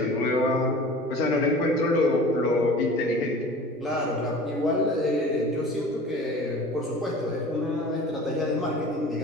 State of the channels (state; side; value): normal; both; correlation 0.41